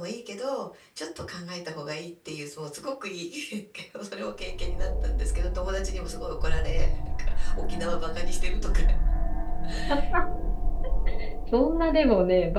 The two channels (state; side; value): identical; both; correlation 1.00